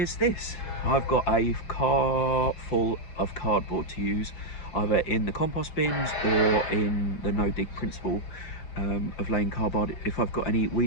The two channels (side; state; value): right; late; 5.7 ms